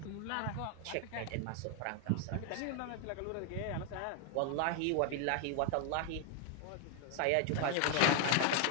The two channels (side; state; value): both; different; correlation 0.00